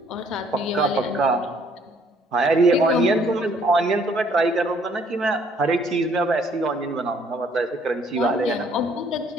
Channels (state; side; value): normal; both; correlation 0.63